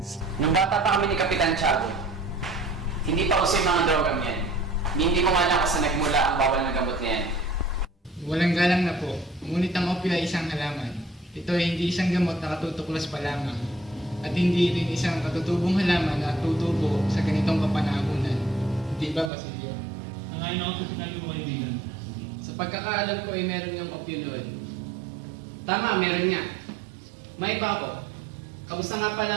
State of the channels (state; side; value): drops out; left; at 19.3 s